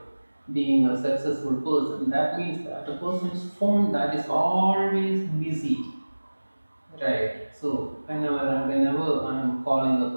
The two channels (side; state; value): both; inverted; correlation -1.00